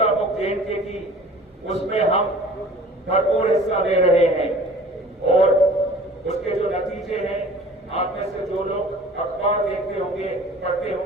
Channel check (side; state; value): both; normal; correlation 0.46